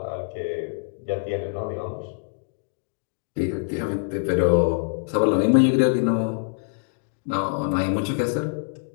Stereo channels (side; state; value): right; silent; digital silence